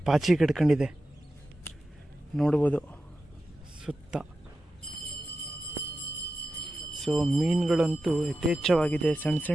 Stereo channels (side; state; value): both; normal; correlation 0.92